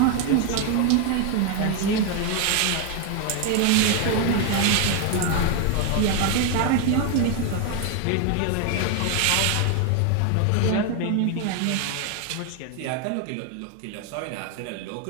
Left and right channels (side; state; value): both; different; correlation 0.01